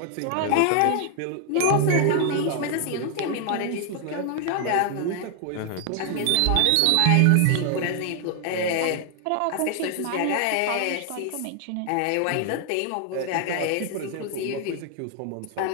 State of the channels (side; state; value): both; different; correlation 0.00